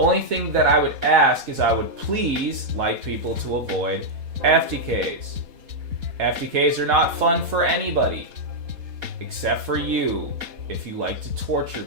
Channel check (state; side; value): late; left; 4.2 ms